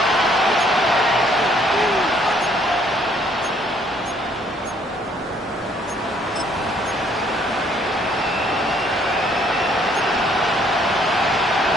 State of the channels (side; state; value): both; normal; correlation 0.64